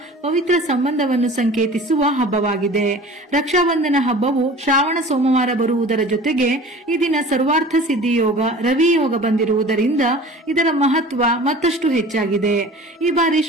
ಪವಿತ್ರ ಸಂಬಂಧವನ್ನು ಸಂಕೇತಿಸುವ ಹಬ್ಬವಾಗಿದೆ. ರಕ್ಷಾಬಂಧನ ಹಬ್ಬವು ಶ್ರಾವಣ ಸೋಮವಾರ ಬರುವುದರ ಜೊತೆಗೆ ಈ ದಿನ ಸರ್ವಾರ್ಥ ಸಿದ್ಧಿ ಯೋಗ ರವಿ ಯೋಗ ಬಂದಿರುವುದರಿಂದ ಇದರ ಮಹತ್ವ ಮತ್ತಷ್ಟು ಹೆಚ್ಚಾಗಿದೆ. ಈ ಬಾರಿ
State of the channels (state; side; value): normal; both; correlation 0.42